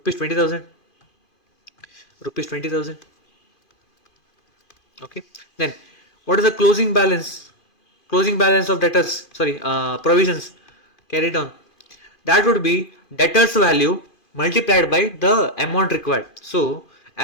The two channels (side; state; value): right; late; 2.5 ms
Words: 20,000. Rupees 20,000. Okay. Then what is the closing balance? Closing balance of debtors. Sorry, provisions carried on. That would be debtors value multiplied by the amount required. So